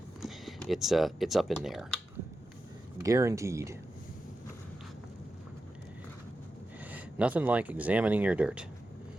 it's up in there. Guaranteed. Nothing like examining your dirt.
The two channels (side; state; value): both; normal; correlation 0.91